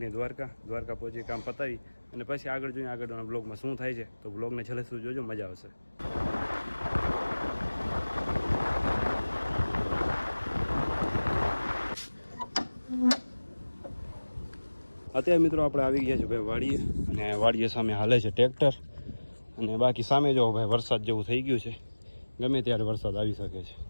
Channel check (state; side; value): inverted; both; correlation -1.00